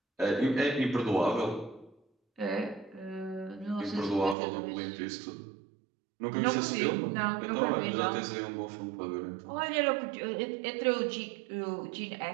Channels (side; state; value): left; drops out; at 4.4 s